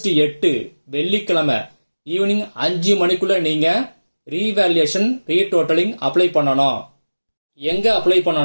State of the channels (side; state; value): both; inverted; correlation -1.00